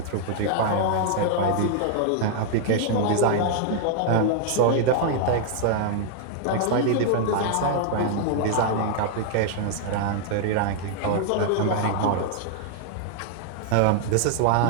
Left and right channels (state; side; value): different; both; correlation -0.01